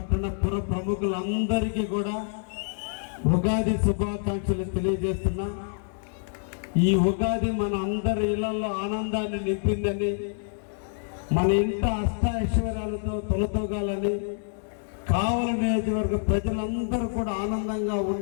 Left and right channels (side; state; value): right; silent; digital silence